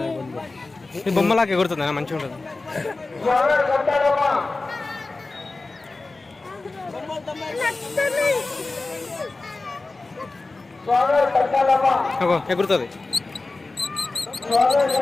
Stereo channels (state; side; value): quieter; right; 3.4 dB